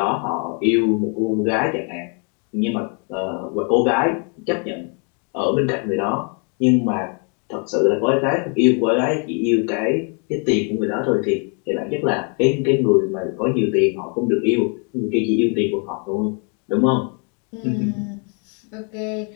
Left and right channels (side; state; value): right; quieter; 38.7 dB